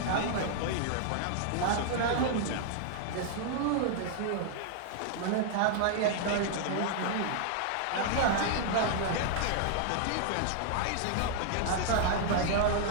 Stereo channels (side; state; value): both; different; correlation -0.01